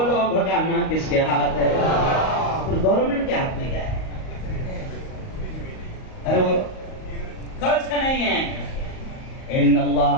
بھگانا کس کے ہاتھ ہے؟ پھر گورنمنٹ کے ہاتھ میں کیا ہے؟ ارے وہ کچھ نہیں ہے. ان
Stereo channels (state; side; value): late; right; 38 ms